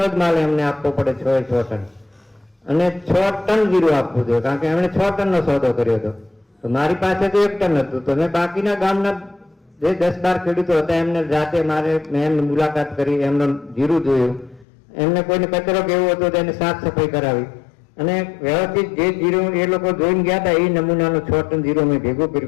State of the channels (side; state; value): right; drops out; at 14.7 s